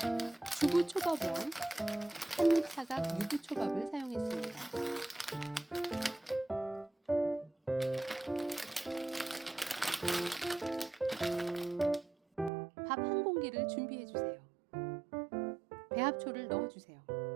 주부초밥왕 한입사각 유부초밥을 사용했습니다. 밥 한 공기를 준비해 주세요. 배합초를 넣어 주세요.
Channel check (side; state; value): left; drops out; at 12.5 s